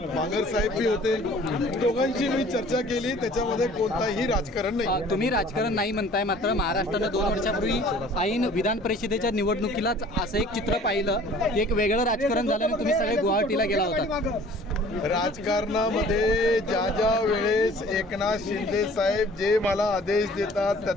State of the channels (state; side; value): normal; both; correlation 0.50